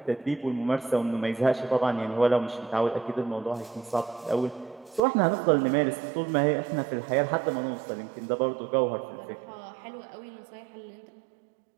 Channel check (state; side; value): drops out; left; at 5.0 s